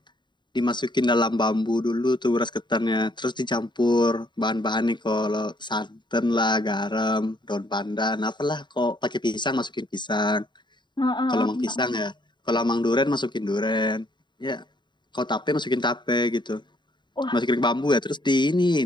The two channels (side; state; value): right; late; 0.22 ms